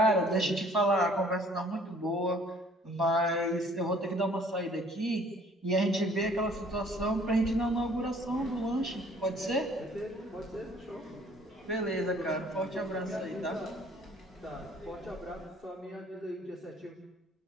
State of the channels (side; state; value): both; normal; correlation 0.56